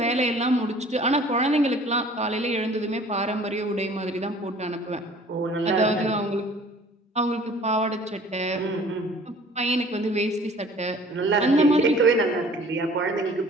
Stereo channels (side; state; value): both; normal; correlation 0.50